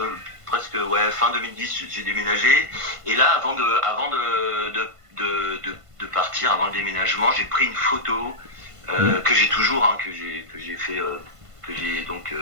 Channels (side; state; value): left; late; 1.5 ms